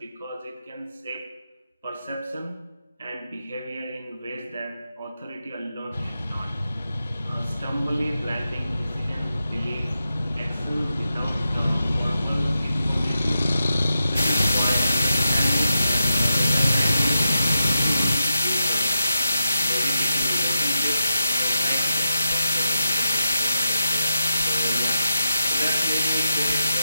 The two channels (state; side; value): inverted; both; correlation -0.88